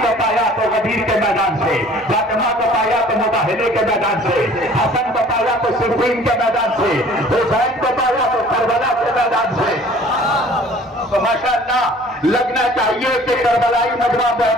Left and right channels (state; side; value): normal; both; correlation 0.51